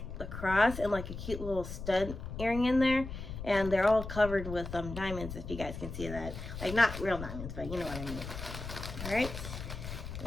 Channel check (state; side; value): noise; left; rumble, 8 dB below the sound